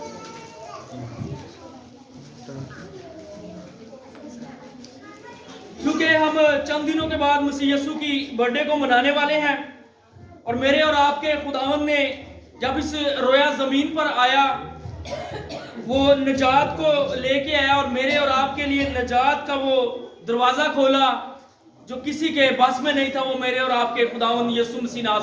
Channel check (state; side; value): identical; both; correlation 1.00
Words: क्योंकि हम चंद दिनों के बाद मसीह यीशु की बर्थडे को मनाने वाले हैं। और मेरे और आपके खुदावंद ने जब इस रोया जमीन पर आया, वो निजात को लेके आया और मेरे और आपके लिए निजात का वो दरवाजा खोला जो किसी के बस में नहीं था। वो मेरे और आपके खुदावंद यीशु मसीह